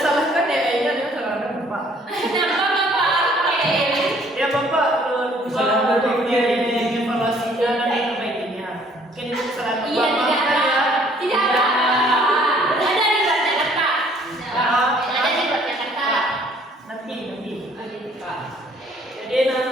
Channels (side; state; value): both; normal; correlation 0.60